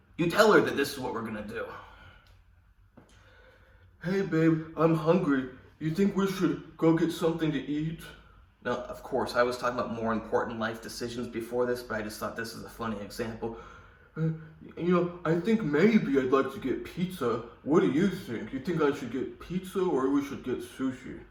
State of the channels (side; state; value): both; identical; correlation 1.00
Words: You tell her that this is what we're gonna do. Hey babe, I'm hungry. You think we should go get something to eat? Now, of course, I was talking about more important life decisions before this, but I just thought this is a funny example. I think maybe I'd like to get pizza. What do you think? You think I should get pizza or we should get sushi?